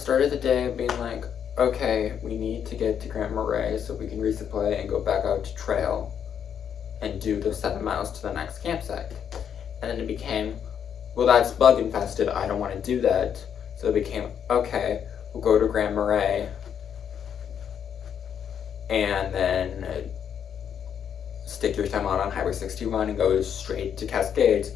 the day being like, okay, we need to get to Grand Marais so we can resupply and go back out to trail and do those 7 miles to the next campsite. And then it became, well, that's bug infested, I don't want to do that. So it became, okay, we'll go to Grand Marais and then stick your thumb out on Highway 61 and go straight to Cascades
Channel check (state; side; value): quieter; right; 8.4 dB